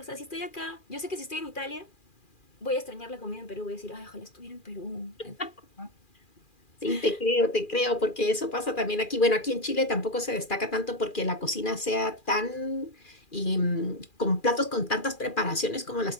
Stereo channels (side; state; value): right; late; 2.4 ms